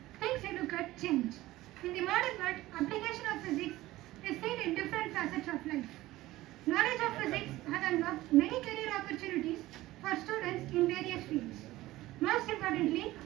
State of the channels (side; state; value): left; quieter; 17.1 dB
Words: things you look at change. In the modern world, application of physics is seen in different facets of life. Knowledge of physics has unlocked many career opportunities for students in various fields. Most importantly,